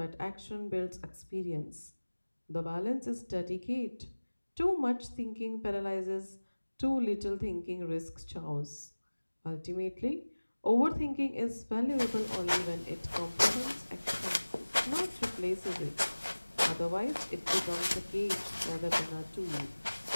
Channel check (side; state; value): both; inverted; correlation -1.00